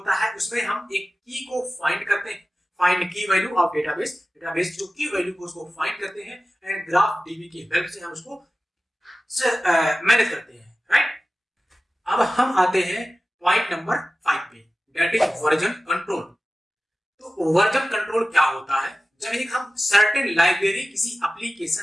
है, उसमें हम एक की को फाइंड करते हैं, फाइंड की वैल्यू ऑफ डेटाबेस, डेटाबेस जो की वैल्यू को उसको फाइंड करते हैं, एंड ग्राफ डीबी की हेल्प से हम उसको मैनेज करते हैं, राइट। अब हम आते हैं पॉइंट नंबर 5 पे, दैट इज वर्जन कंट्रोल। तो वर्जन कंट्रोल क्या होता है, जब एक हम सर्टेन लाइब्रेरी किसी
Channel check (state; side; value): normal; both; correlation 0.95